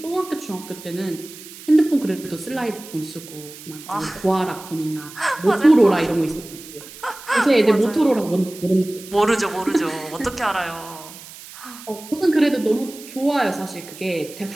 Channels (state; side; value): noise; right; hiss, 16 dB below the sound